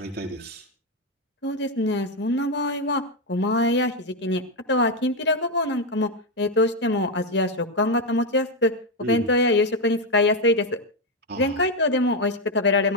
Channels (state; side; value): normal; both; correlation 0.06